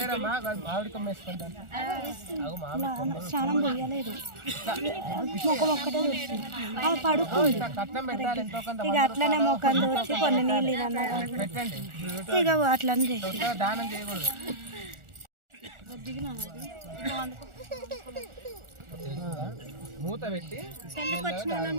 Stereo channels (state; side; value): late; left; 1.4 ms